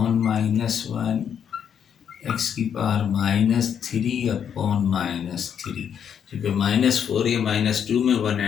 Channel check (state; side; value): quieter; right; 8.2 dB